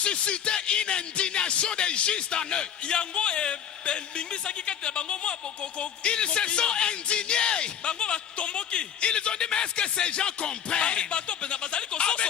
une indignation des justes en eux. Yango bingisaki kati na bango mwa boko. Ils se sont indignés. Bango batomboki. Ils ont dit, mais est-ce que ces gens comprennent Bato pena bazali avec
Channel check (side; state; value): right; quieter; 8.7 dB